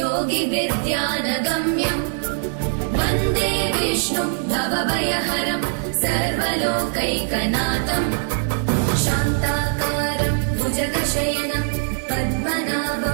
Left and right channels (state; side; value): silent; left; digital silence